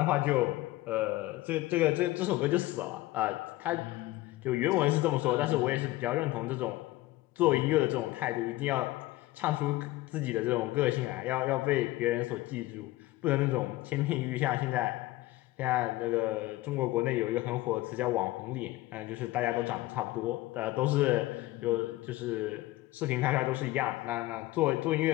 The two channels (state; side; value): quieter; right; 18.0 dB